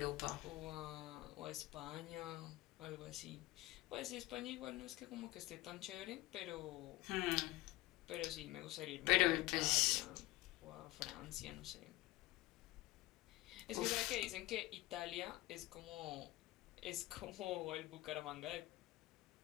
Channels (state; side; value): quieter; right; 18.1 dB